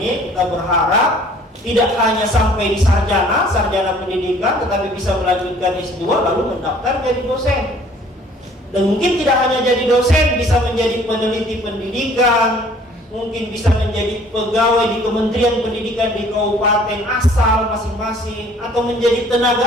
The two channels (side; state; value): both; normal; correlation 0.55